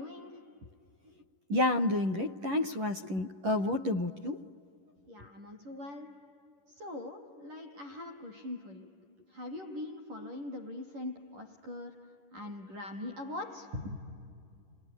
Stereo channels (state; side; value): late; left; 11 ms